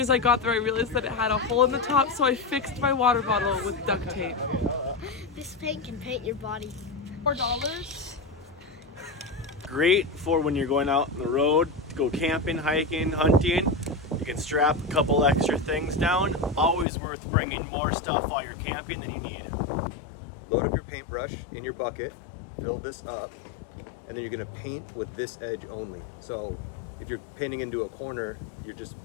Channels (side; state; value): right; drops out; at 16.9 s